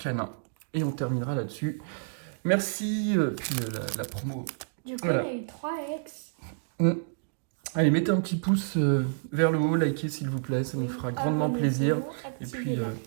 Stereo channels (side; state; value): left; silent; digital silence